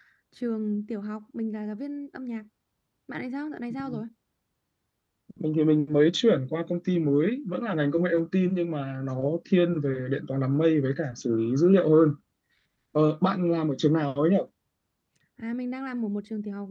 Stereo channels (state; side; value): identical; both; correlation 1.00